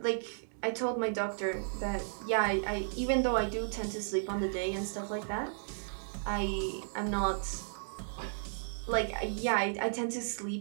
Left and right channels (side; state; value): left; silent; digital silence